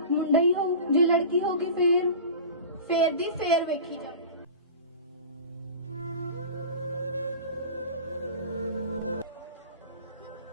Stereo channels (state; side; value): inverted; both; correlation -0.34